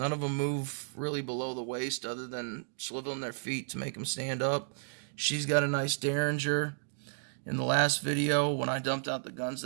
of them move really below the waist other than swiveling their feet to make them stand up. She's got a nice derringer. In the last video, when I dumped out the guns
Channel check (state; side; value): silent; left; digital silence